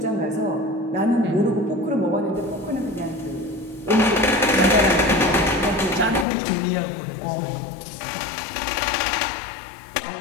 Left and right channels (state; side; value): drops out; right; at 6.2 s